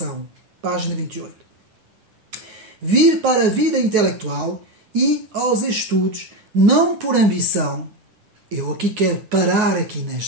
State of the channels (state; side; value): late; left; 10 ms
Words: Página 28. Vir para a vida intelectual e aos estudos, não por ambição. Eu aqui quero parar aqui